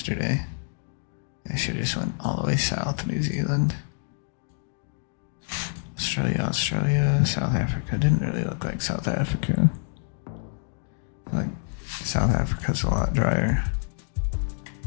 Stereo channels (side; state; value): right; silent; digital silence